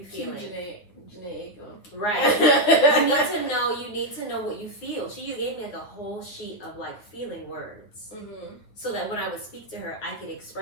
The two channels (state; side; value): late; right; 9.4 ms